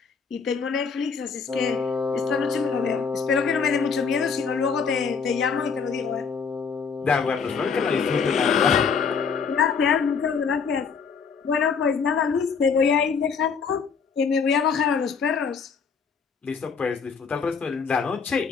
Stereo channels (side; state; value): right; quieter; 5.8 dB